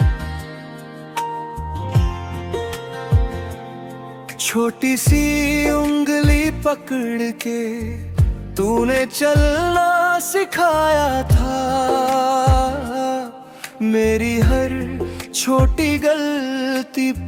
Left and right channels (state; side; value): identical; both; correlation 1.00